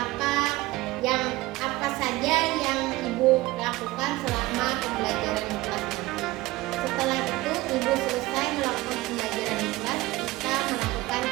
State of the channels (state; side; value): quieter; left; 19.3 dB